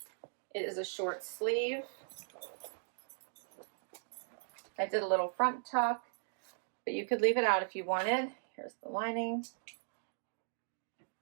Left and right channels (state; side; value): silent; left; digital silence